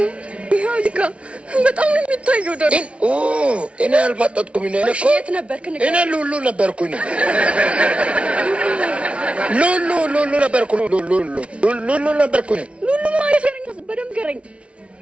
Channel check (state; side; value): late; left; 0.061 ms